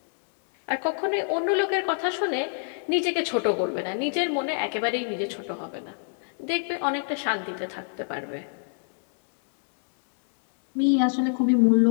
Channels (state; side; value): silent; right; digital silence